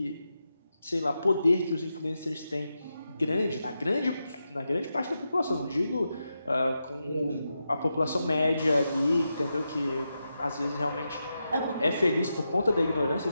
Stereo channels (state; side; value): inverted; both; correlation -0.88